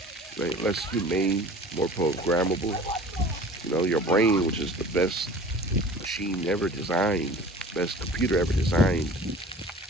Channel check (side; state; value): both; normal; correlation 0.43